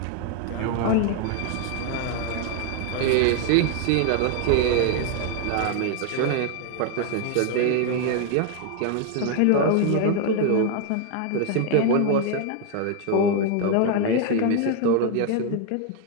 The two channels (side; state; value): both; different; correlation 0.00